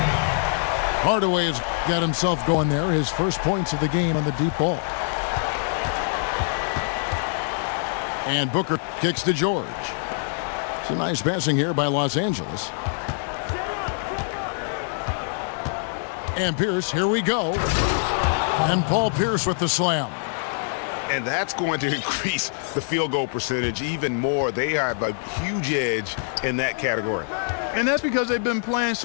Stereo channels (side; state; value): right; silent; digital silence